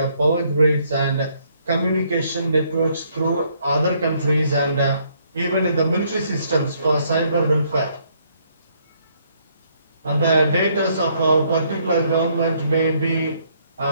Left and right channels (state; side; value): inverted; both; correlation -0.69